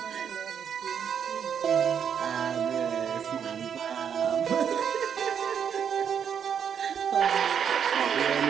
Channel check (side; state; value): left; quieter; 7.9 dB